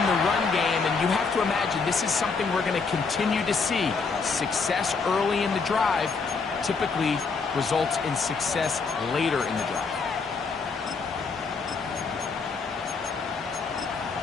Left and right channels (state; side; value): quieter; right; 4.8 dB